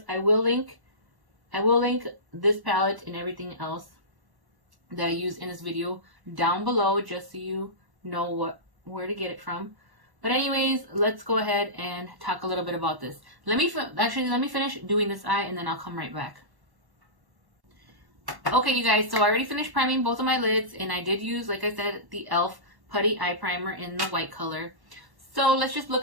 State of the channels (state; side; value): late; left; 1.1 ms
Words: I will link this palette and everything else that I use in this video down below, just so you know where to get it from. But anyways, let's go ahead and talk a little bit about this. Let me finish doing this eye and then I'll come right back. Okay, you guys, so I already finished priming both of my lids, and I did use, like I said, the Bff Putty Eye Primer in the white color. So let's just